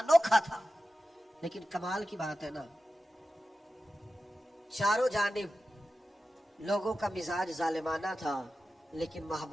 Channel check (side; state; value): both; normal; correlation 0.93